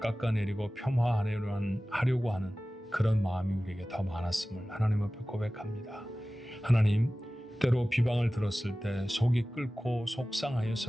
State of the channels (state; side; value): normal; both; correlation 0.97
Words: 깎아내리고 폄하하려고 하는 그런 마음이 우리에게 더 많았음을 하나님 앞에 고백합니다. 하나님, 때로 비방을 들었을 때 속이 끓고